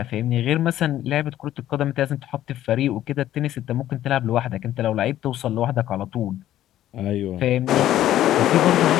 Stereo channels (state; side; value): quieter; right; 12.8 dB